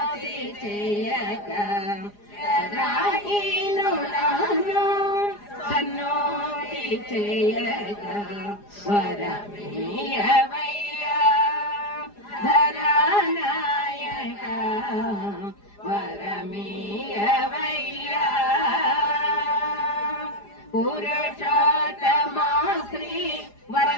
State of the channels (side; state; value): right; late; 4.9 ms